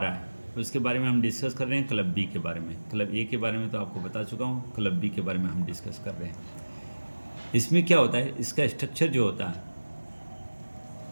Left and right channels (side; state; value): both; inverted; correlation -1.00